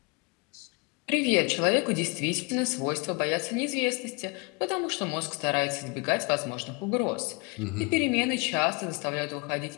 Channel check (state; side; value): quieter; right; 30.6 dB